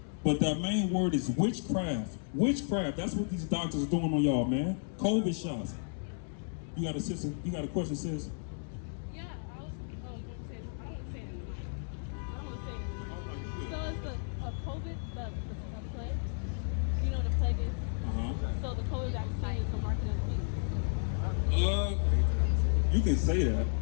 But that main word is witchcraft. Witchcraft. That's what these doctors are doing on y'all, man. COVID shots. You got a sister? You got a question, sis? Yeah, I was going to say, I don't want to say it anymore. I don't want to say it anymore. So it's the COVID, the plague. You know what the plague is? So the COVID vaccine is the market of the beast. You can say that.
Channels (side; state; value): right; silent; digital silence